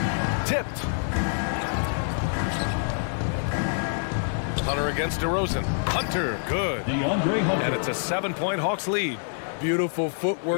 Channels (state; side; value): silent; right; 59 dB below the other